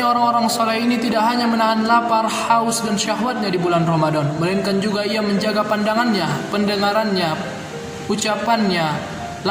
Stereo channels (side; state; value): both; identical; correlation 1.00